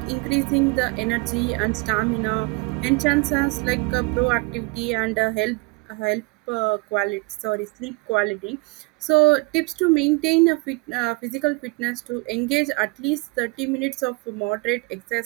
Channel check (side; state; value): left; quieter; 26.5 dB